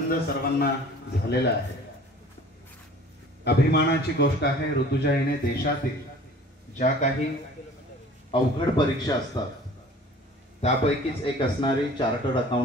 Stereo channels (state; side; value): normal; both; correlation 0.47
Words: सर्वांना झालेला आहे. अभिमानाची गोष्ट आहे. ऋतुजा हिने देशातील ज्या काही अवघड परीक्षा असतात त्यापैकीच एक असणारी चार्टर्ड